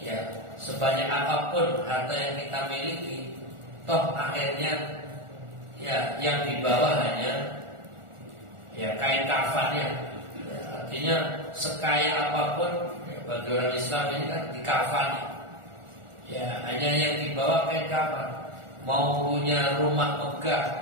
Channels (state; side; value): late; left; 1.4 ms